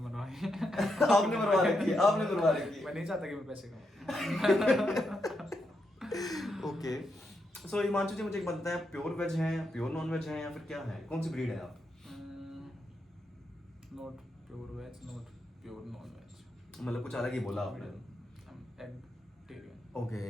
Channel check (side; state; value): both; normal; correlation 0.83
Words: आपने मरवा रखी है, आपने मरवा रखी है। मैं नहीं चाहता कि मैं पैसे कमाऊं। ओके, सो हिमांशु जी, मुझे एक बात बताएं, आप प्योर वेज हैं, प्योर नॉन वेज हैं, या फिर क्या है? कौन सी ब्रीड है आप? Not pure veg, not pure non veg. मतलब कुछ अलग ही बोला आपने। एगिटेरियन। ओके,